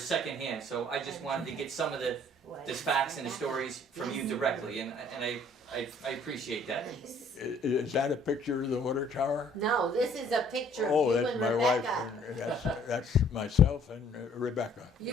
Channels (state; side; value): normal; both; correlation 0.59